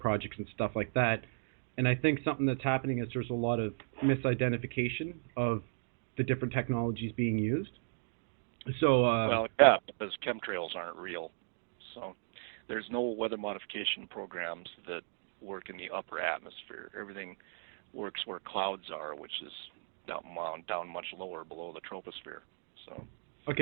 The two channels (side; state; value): left; silent; digital silence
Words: and stuff like that. And I think something that's happening is there's a lot of misidentification of the different technologies being used. So well, yeah, because chemtrails aren't real. So there's no weather modification programs that work in the upper atmosphere. Everything works where clouds are, which is down much lower below the troposphere. So.